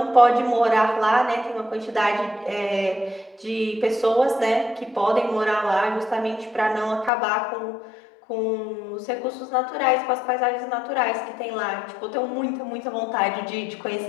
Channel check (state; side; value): drops out; right; at 7.1 s